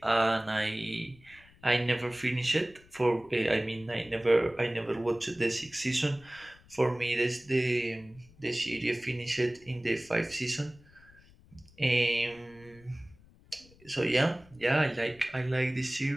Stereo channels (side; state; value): left; noise; rumble, 26 dB below the sound